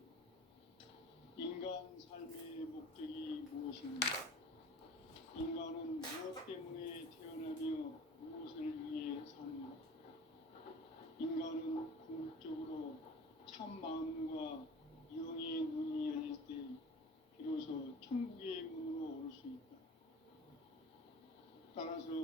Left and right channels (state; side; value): normal; both; correlation 0.41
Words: 인간 삶의 목적이 무엇인가? 인간은 무엇 때문에 태어나며 무엇을 위해 사는가? 인간은 궁극적으로 참 마음과 영의 눈이 열릴 때 비로소 천국의 문으로 올 수 있다.